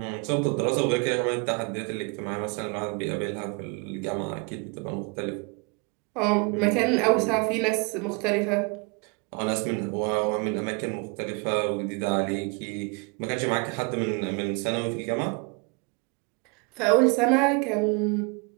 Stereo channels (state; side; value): quieter; left; 32.0 dB